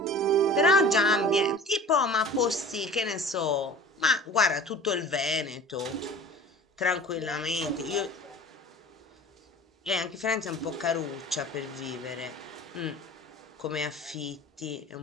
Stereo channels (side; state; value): both; normal; correlation 0.42